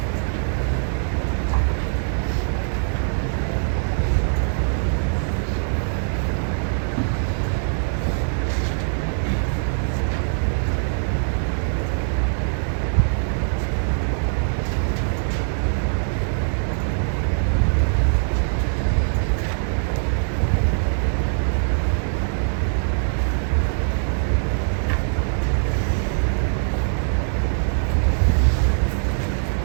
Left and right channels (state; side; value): silent; left; digital silence